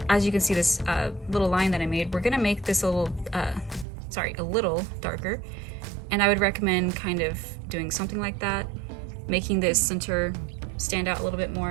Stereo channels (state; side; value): drops out; left; at 3.9 s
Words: as you can see this little line that I made, we're gonna make this a little darker. And I would recommend kind of doing something like that, making this center stand out a little bit